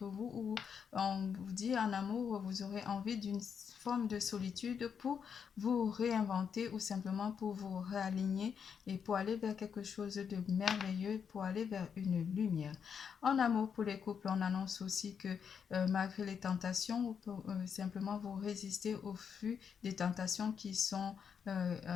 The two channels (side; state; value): right; quieter; 7.0 dB